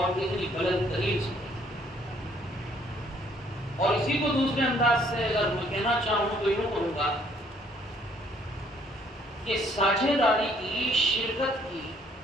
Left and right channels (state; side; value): normal; both; correlation 0.63